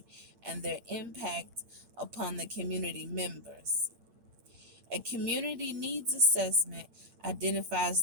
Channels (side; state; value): left; late; 8.7 ms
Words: and their impact upon the community members. A community needs assessment